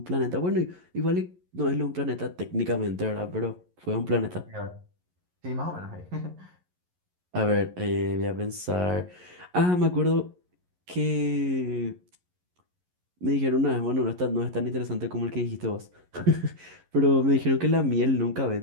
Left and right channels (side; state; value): left; late; 11 ms